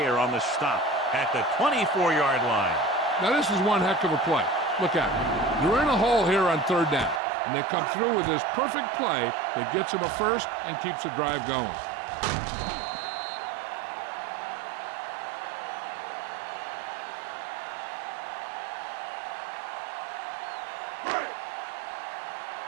on the stop at the 24-yard line. Now this is one heck of a play. Look at it. They're in a hole here on third down, and they come through with this perfect play that gets them a first and keeps the drive going.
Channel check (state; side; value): drops out; left; at 7.2 s